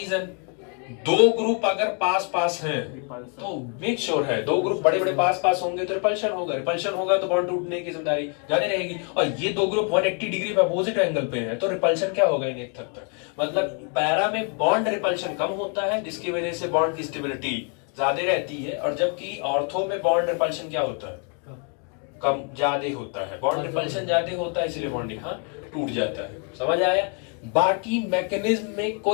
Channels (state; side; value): quieter; right; 40.0 dB